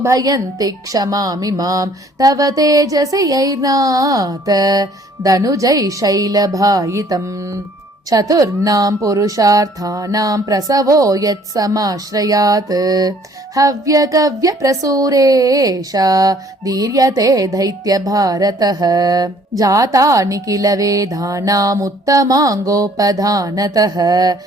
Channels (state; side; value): normal; both; correlation 0.59